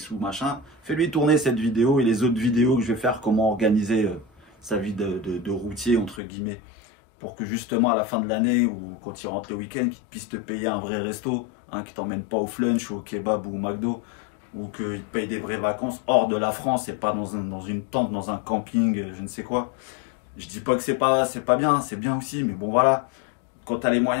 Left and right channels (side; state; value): right; drops out; at 6.2 s